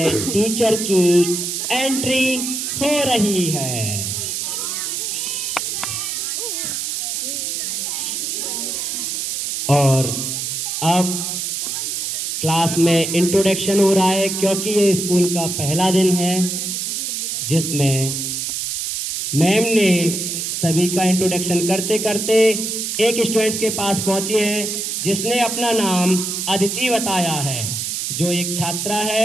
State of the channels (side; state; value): right; noise; hiss, 2 dB below the sound